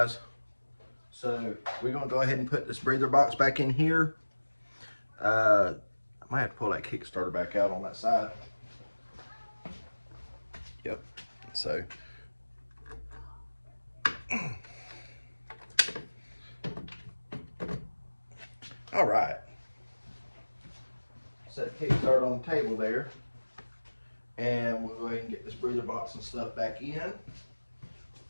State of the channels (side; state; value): both; inverted; correlation -1.00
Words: So we're going to go ahead and put this breather box back in here. I might have to pull that Kickstarter back out on that side. Yep. So all right. Set the Kickstarter on the table there. And we'll go ahead and get this breather box and stuff back in.